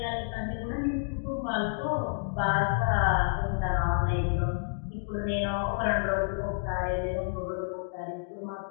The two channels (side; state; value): right; silent; digital silence